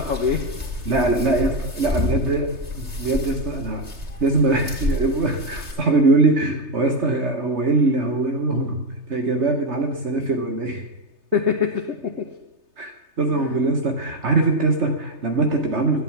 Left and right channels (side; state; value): left; late; 3.3 ms